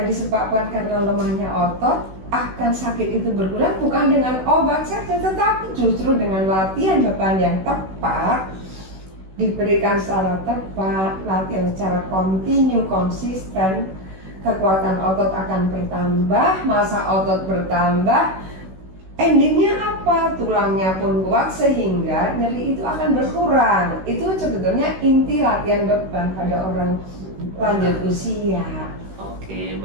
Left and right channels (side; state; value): left; late; 16 ms